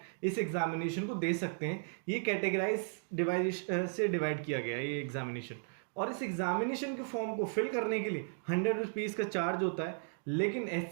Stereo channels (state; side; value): silent; left; digital silence